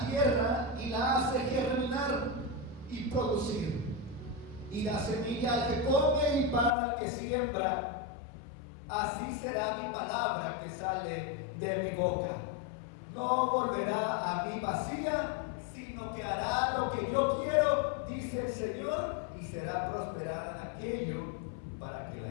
tierra y la hace germinar y producir, y da semilla al que come y pan al que siembra, así será mi palabra que sale de mi boca. No volverá a mí vacía, sino que hará lo que yo quiero, dice el Señor, y será prosperada en aquello para que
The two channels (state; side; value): drops out; right; at 6.8 s